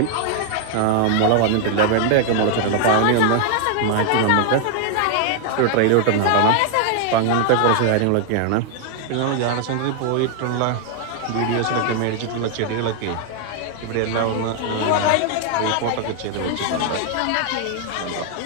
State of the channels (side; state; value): both; different; correlation 0.00